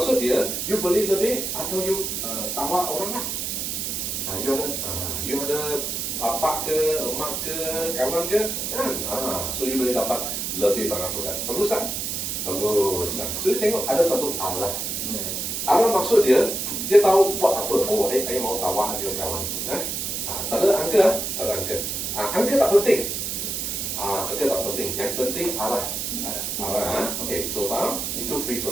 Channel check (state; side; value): noise; right; hiss, 2 dB below the sound